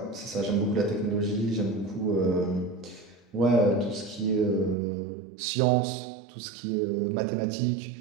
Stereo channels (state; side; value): drops out; left; at 4.8 s